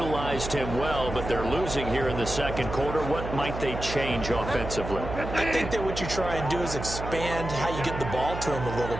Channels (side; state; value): right; noise; hum, 7 dB below the sound